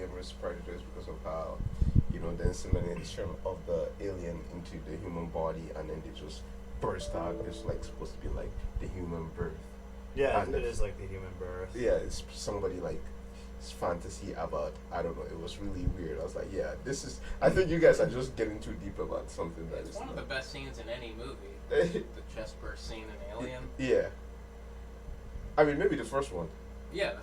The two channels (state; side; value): identical; both; correlation 1.00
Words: versus predators because of how, the insemination of the alien into the human body and then they just burst out. It's like supposed to be like the human birth. Yeah, And it is like the human birth. Yeah, it's somebody like fantasy about, I don't know, it was really weird. I was like, yeah, I think you guys are just getting too deep about something that it's is one of the best scenes in any movie. The chest burst scene in Alien. Yeah. I mean, maybe the first one. Yeah,